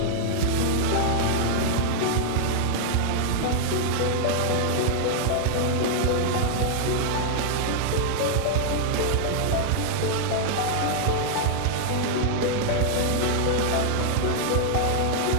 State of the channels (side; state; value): both; different; correlation -0.01